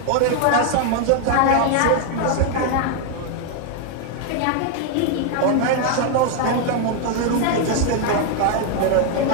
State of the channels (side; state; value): both; different; correlation 0.01